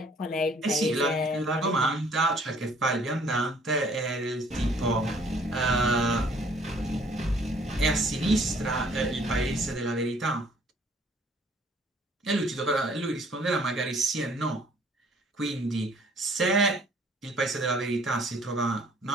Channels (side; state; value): both; normal; correlation 0.58